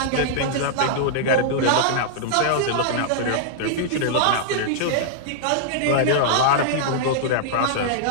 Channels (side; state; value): both; different; correlation -0.01